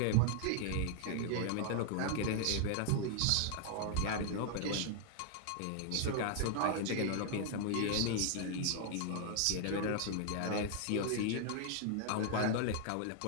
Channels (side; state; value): both; different; correlation 0.00